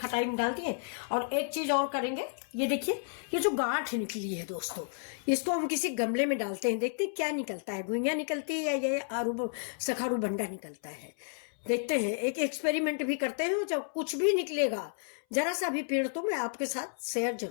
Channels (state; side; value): silent; right; 57 dB below the other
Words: में डाल दिए, और एक चीज और करेंगे। ये देखिए, ये जो गांठ निकली है दोस्तों, इसको हम किसी गमले में डालते हैं, देखते हैं क्या निकलता है, घुइयां निकलती है या ये आरू सखारू बंडा निकलता है। देखते हैं, एक एक्सपेरिमेंट भी करते हैं। जब कुछ भी निकलेगा, जरा सा भी पेड़, तो मैं आपके साथ शेयर